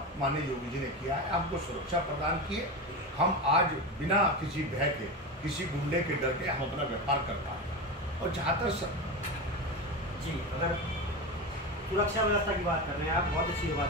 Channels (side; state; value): both; normal; correlation 0.21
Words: माननीय योगी जी ने किया है। हमको सुरक्षा प्रदान किए, हम आज बिना किसी भय के, किसी गुंडे के डर के हम अपना व्यापार कर पाए। और जहाँ तक जी, अगर सुरक्षा व्यवस्था की बात कर रहे हैं आप, बहुत अच्छी बात